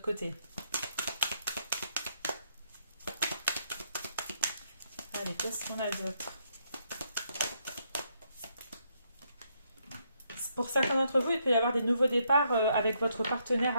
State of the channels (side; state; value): both; inverted; correlation -0.75